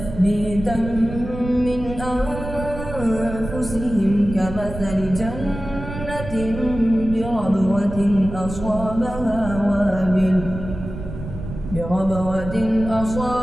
من أنفسهم كمثل جنة بربوة أصابها وابل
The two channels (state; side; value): noise; right; rumble, 9 dB below the sound